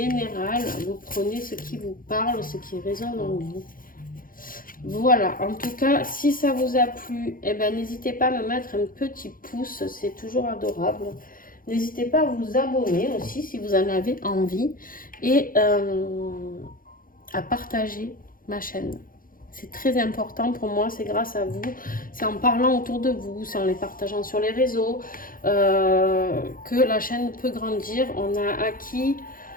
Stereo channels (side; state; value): right; late; 0.41 ms